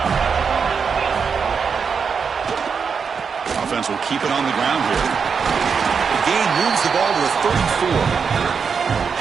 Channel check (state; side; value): quieter; left; 6.0 dB